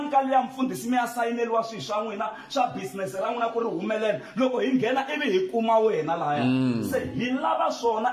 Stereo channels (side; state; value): both; identical; correlation 1.00